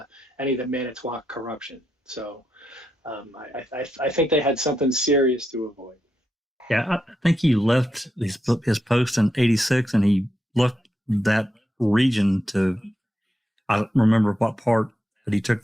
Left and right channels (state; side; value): normal; both; correlation 0.84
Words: any of the Manitowoc corruption. So, I think they had something serious to avoid. Yeah, I think he left his post in '86, and he left that region to. I don't remember what part, but he took